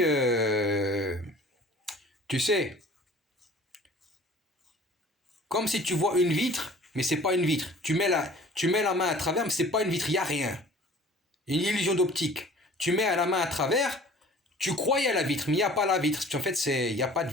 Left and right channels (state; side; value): normal; both; correlation 0.48